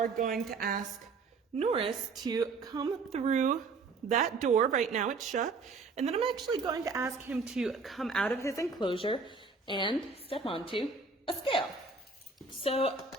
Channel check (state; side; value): quieter; left; 4.3 dB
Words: going to ask Norris to come through that door. Right now it's shut. And then I'm actually going to ask him to come out of his enclosure and step onto a scale. So